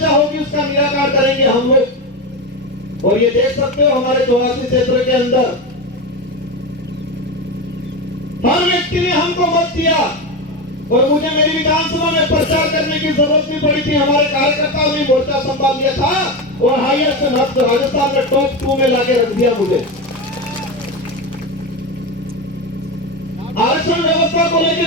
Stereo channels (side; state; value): both; normal; correlation 0.17